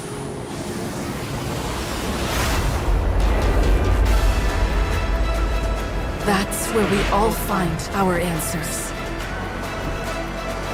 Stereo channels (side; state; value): both; identical; correlation 1.00